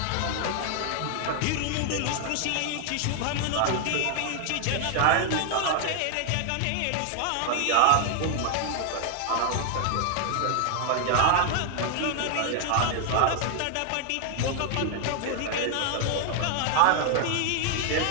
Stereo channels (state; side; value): different; both; correlation 0.00